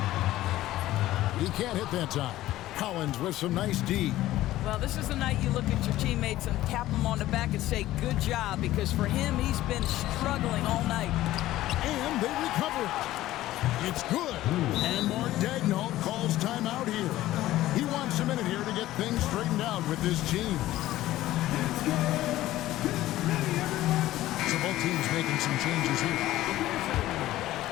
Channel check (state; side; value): quieter; right; 15.3 dB